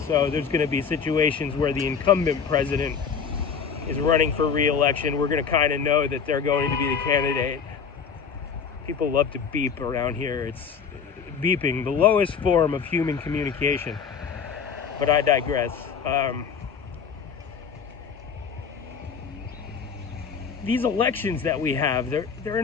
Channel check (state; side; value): quieter; right; 6.5 dB